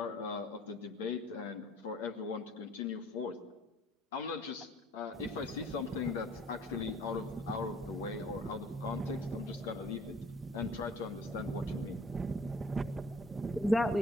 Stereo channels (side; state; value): both; normal; correlation 0.55